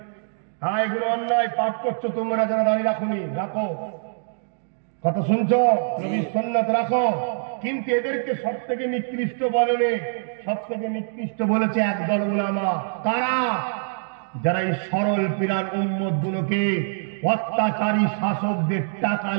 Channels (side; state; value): left; silent; digital silence